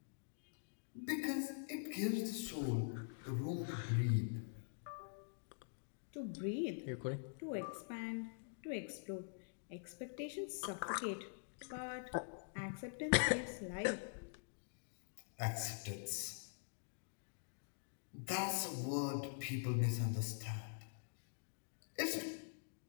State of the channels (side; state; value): right; silent; digital silence